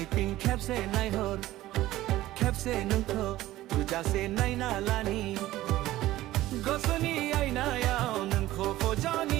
तिं खेबसे नायहर खेबसे नोंखौ तुजासे नायना लानि गोसोनि आयनायाव नोंखौ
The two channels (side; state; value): left; quieter; 15.8 dB